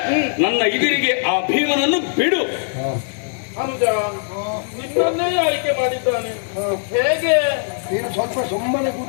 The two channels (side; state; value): right; silent; digital silence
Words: ನನ್ನ ಎದುರಿಗೆ ಆ ಭೀಮನನ್ನು ಬಿಡು. ನಿನ್ನನ್ನೇ ಆಯ್ಕೆ ಮಾಡಿದ್ದಾನೆ. ಹೇಗೆ? ನೀನು ಸ್ವಲ್ಪ ಸುಮ್ಮನೆ